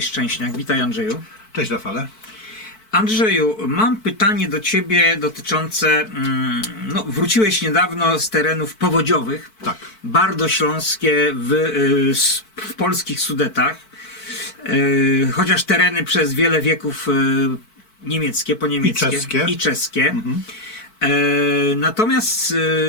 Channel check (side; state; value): right; late; 4.6 ms